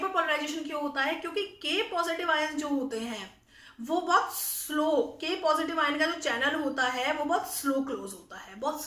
क्यों होता है? क्योंकि के पॉजिटिव आयन जो होते हैं वो बहुत स्लो, के पॉजिटिव आयन का जो चैनल होता है वो बहुत स्लो क्लोज होता है, बहुत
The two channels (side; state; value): both; identical; correlation 1.00